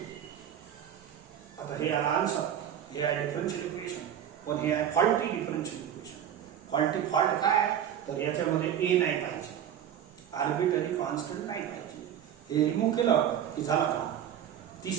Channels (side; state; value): left; quieter; 9.7 dB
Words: आता हे आला आन्सर हे आहे डिफरन्शियल इक्वेशन पण हे आहे फॉल्टी डिफरन्शियल इक्वेशन फॉल्ट काय आहे तर याच्यामध्ये ए नाही पाहिजे आर्बिट्ररी कॉन्स्टंट नाही पाहिजे हे रिमूव्ह केलं की झाला काम